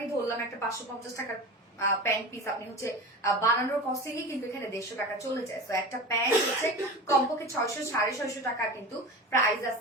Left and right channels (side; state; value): both; normal; correlation 0.31